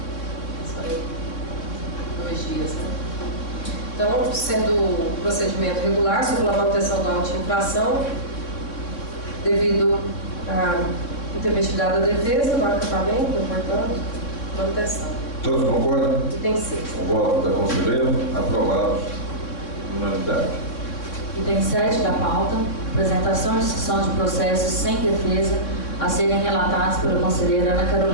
Só 2 dias, né? Então, sendo o procedimento regular, sobre a manutenção da auto de infração, devido à intempestividade da defesa, do acatamento, portanto, manutenção. Todos concordam? Item 6. O voto da conselheira, aprovados por unanimidade. Item 7 da pauta, apresentação e discussão de processos sem defesa a serem relatados pela conselheira Ana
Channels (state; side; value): late; right; 3.6 ms